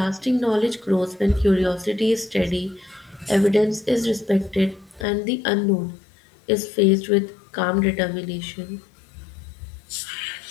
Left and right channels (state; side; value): drops out; right; at 5.1 s